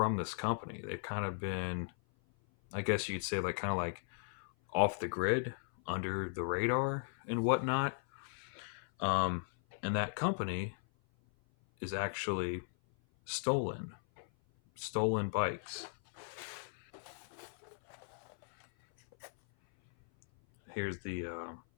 this company. They've kind of been, I guess you'd say, like kind of like off the grid, under the radar, and whatnot. Um, and that company is actually stolen, stolen bikes. Here's the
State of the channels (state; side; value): silent; right; 53 dB below the other